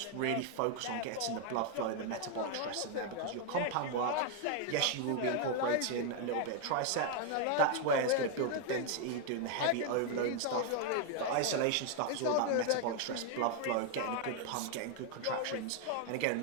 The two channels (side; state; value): both; different; correlation 0.00